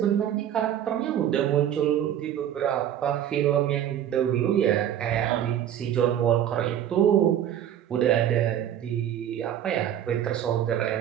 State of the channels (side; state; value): left; quieter; 10.5 dB